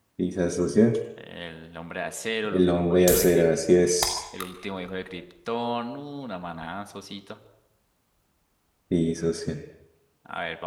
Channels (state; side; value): identical; both; correlation 1.00